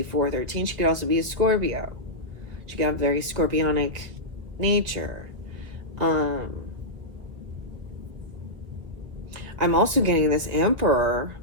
413. She could also be a Scorpio. She could have very scorpionic nature. I'm also getting this Emperor.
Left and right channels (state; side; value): late; left; 1.5 ms